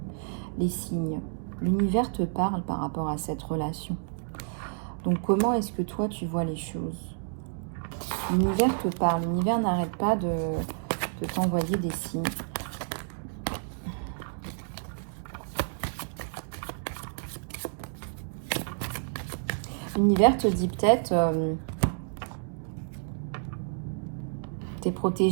Les signes. L'univers te parle par rapport à cette relation. Donc, comment est-ce que toi, tu vois les choses? L'univers te parle. L'univers n'arrête pas de t'envoyer des signes. L'univers te dit peut-être, t'es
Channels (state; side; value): silent; left; digital silence